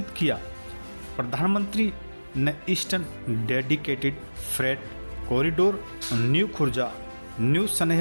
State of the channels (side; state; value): both; inverted; correlation -1.00